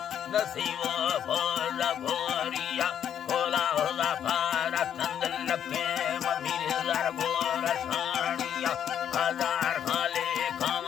नसीबो फोर भोरिया होला होला पारा चंदन लखे ममीर हजार गोरा सानिया हजार खाले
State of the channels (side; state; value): right; quieter; 9.4 dB